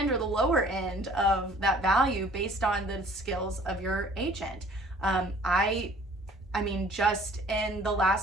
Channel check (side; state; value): both; normal; correlation 0.53